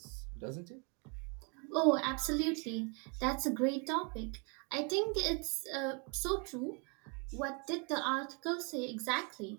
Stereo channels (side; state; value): left; quieter; 33.7 dB